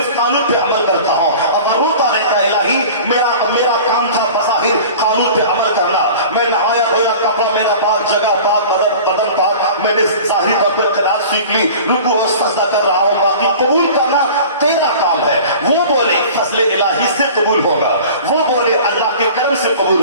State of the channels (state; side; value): inverted; both; correlation -0.40